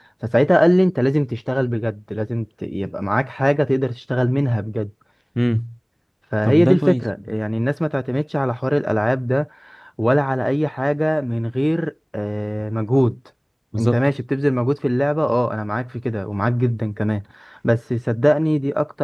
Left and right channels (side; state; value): both; identical; correlation 1.00